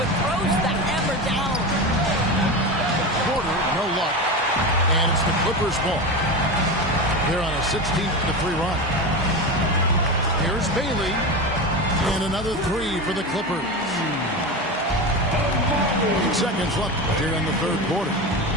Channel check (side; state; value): both; normal; correlation 0.22